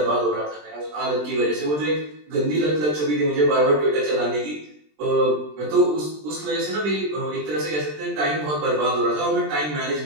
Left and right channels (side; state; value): left; late; 20 ms